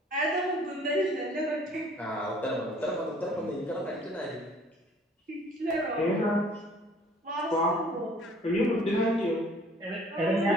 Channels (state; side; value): normal; both; correlation 0.54